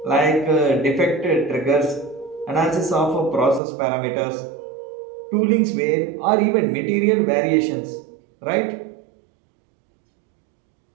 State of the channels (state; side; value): drops out; left; at 3.6 s